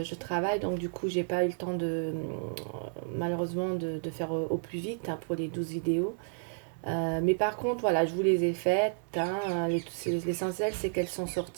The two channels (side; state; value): left; silent; 57 dB below the other